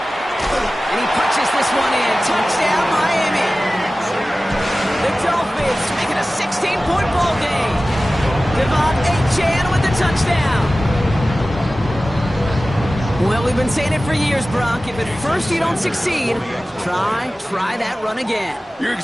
he punches this one in. Touchdown, Miami. The Dolphins making a 16-point ball game. Devon Achane with the touchdown. Well, we've been saying it for years, Brock. If at first you don't succeed, try that run again. You're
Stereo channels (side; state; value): both; normal; correlation 0.96